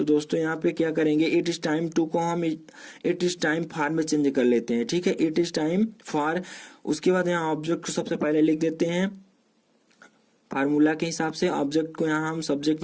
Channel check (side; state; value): both; identical; correlation 1.00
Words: दोस्तों यहाँ पे क्या करेंगे, इट इज टाइम टू को हम इट इज टाइम फॉर में चेंज कर लेते हैं, ठीक है, इट इज टाइम फॉर। उसके बाद यहाँ ऑब्जेक्ट को सबसे पहले लिख देते हैं फार्मूला के हिसाब से, ऑब्जेक्ट को यहाँ हम सब्जेक्ट